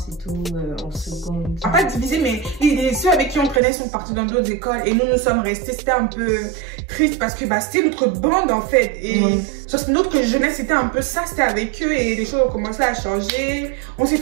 et tout, en seconde. Pas divisé, mais ceux avec qui on traînait sont partis dans d'autres écoles et nous sommes restés. C'était un peu triste parce que c'était notre bande en fait. Et sur notre jeunesse, c'était un peu ça, c'était avec eux et les choses ont commencé à changer. On s'est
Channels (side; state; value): left; drops out; at 3.6 s